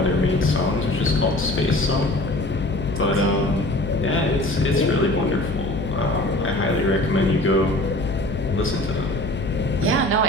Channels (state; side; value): noise; left; hum, 9 dB below the sound